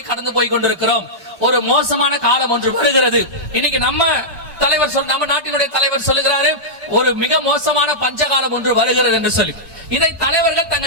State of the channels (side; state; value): both; normal; correlation -0.11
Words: கடந்து போய் கொண்டிருக்கிறோம், ஒரு மோசமான காலம் ஒன்று வருகிறது. இன்னைக்கு நம்ம நாட்டினுடைய தலைவர் சொல்லுகிறாரு, ஒரு மிக மோசமான பஞ்சகாலம் ஒன்று வருகிறது என்று சொல்லி. இதை தலைவர்கள்